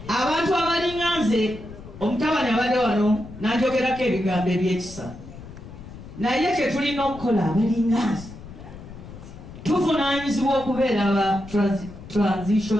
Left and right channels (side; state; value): left; noise; rumble, 15 dB below the sound